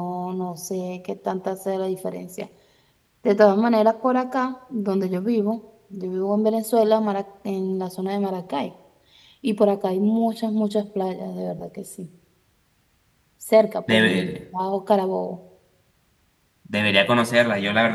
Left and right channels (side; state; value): both; identical; correlation 1.00